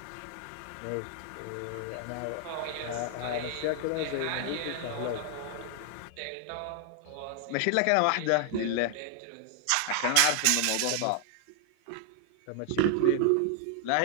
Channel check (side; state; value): both; different; correlation 0.00